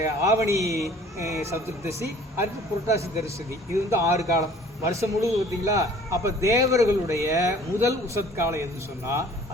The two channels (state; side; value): normal; both; correlation 0.51